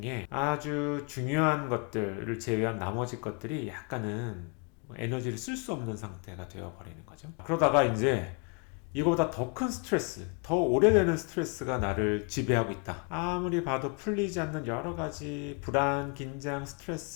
아주 중요한 것들을 제외한 나머지 것들이 약간은 에너지를 쓸 수 없는 상태가 되어 버리는 거죠. 그러다가 이제 이거보다 더 큰 스트레스, 더 오래되는 스트레스가 나를 지배하고 있다. 아무리 봐도 풀리지 않는 여러 가지 불안, 긴장,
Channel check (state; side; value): quieter; right; 34.8 dB